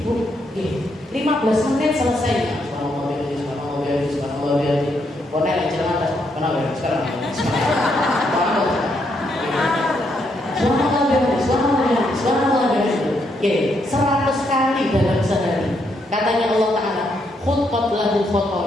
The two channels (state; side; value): normal; both; correlation 0.76